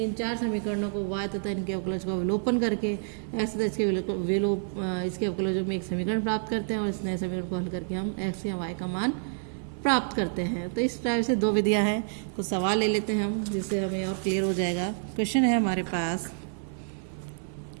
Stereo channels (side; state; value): left; silent; 57 dB below the other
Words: चार समीकरणों को y तथा इनके अवकलज का विलोपन करके x तथा इसके अवकलजों में एक समीकरण प्राप्त करते हैं और इस नए समीकरण को हल करके हम x या y का मान प्राप्त करते हैं। तो इस टाइप से दो विधियां हैं। कुछ सवाल ले लेते हैं हम, जिससे हमें और क्लियर हो जाएगा। क्वेश्चन है हमारे पास,